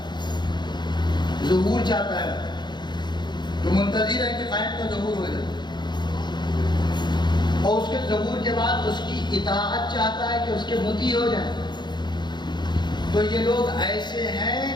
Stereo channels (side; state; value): right; late; 0.21 ms